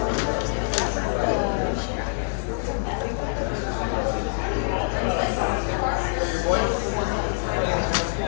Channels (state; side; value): silent; right; digital silence